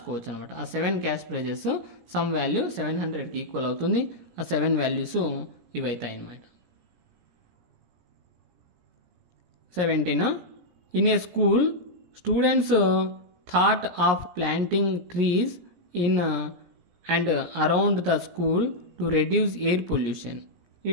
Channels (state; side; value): late; left; 17 ms